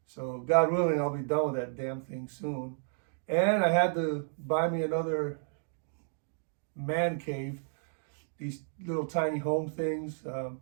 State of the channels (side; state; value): left; silent; digital silence